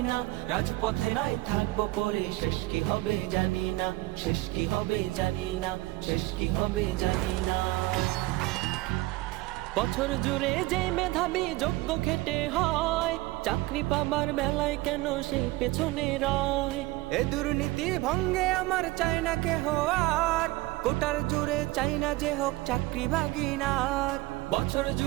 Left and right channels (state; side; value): quieter; left; 19.9 dB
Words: না। রাজপথে নয় থাকবো পরে, শেষ কি হবে জানি না, শেষ কি হবে জানি না, শেষ কি হবে জানি না। বছর জুড়ে যে মেধাবী যোগ্য খেটে হয়, চাকরি পাবার বেলায় কেন সেই পেছনে রয়? এ দুর্নীতি ভঙ্গে আমার চাই না কেহ আর, কোটার জুড়ে চাই না যে হোক চাকরি ভাগিনার। বছর